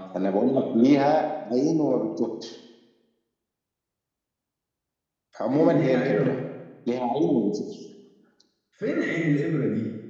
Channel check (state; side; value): identical; both; correlation 1.00